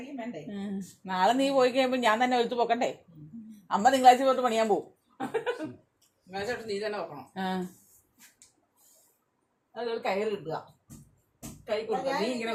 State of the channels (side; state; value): both; identical; correlation 1.00